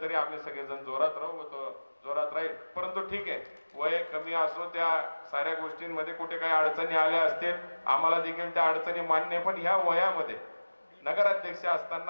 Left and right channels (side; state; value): both; inverted; correlation -1.00